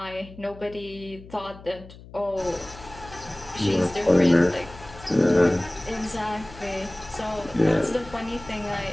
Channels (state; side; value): noise; left; hum, 18 dB below the sound